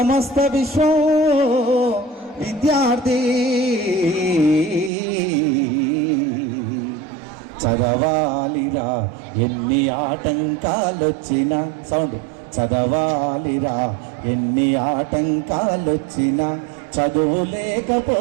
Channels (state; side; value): drops out; left; at 4.9 s